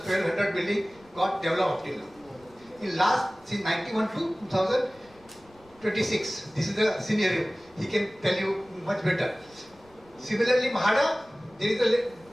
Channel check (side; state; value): left; noise; rumble, 28 dB below the sound